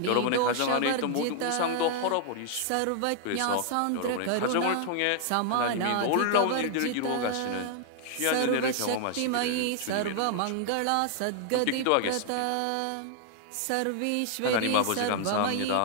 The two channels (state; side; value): different; both; correlation 0.00